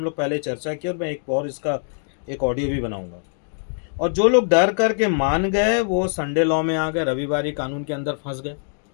लोग पहले चर्चा की और मैं एक और इसका एक ऑडियो भी बनाऊंगा। और जो लोग डर करके मान गए वो संडे लॉ में आ गए, रविवारी कानून के अंदर फंस गए,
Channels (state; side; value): silent; right; digital silence